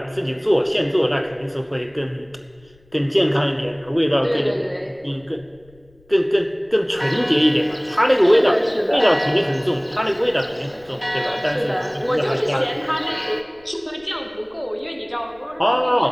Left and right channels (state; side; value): noise; left; rumble, 29 dB below the sound